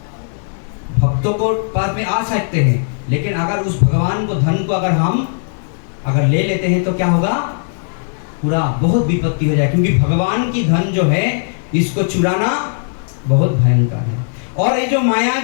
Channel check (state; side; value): silent; right; digital silence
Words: भक्तों को पास में आ सकते हैं, लेकिन अगर उस भगवान को धन को अगर ले लेते हैं तो क्या होगा, पूरा बहुत विपत्ति हो जाए, क्योंकि भगवान की धन जो है इसको चुराना बहुत भयंकर है। और ये जो माया